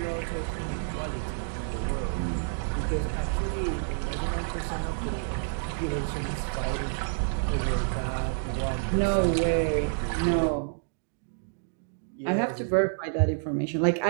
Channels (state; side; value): silent; left; digital silence